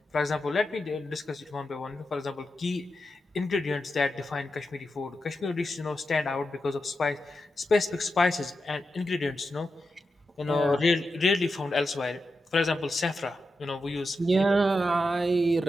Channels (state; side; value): normal; both; correlation 0.89